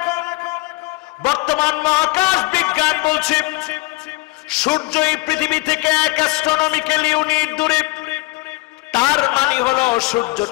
বর্তমান মহাকাশ বিজ্ঞান বলছে সূর্য এই পৃথিবী থেকে 1 অ্যাস্ট্রোনমিক্যাল ইউনিট দূরে। তার মানে হলো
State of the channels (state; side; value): quieter; right; 22.9 dB